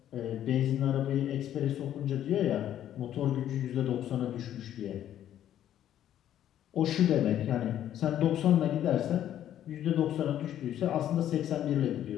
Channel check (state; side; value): quieter; right; 11.2 dB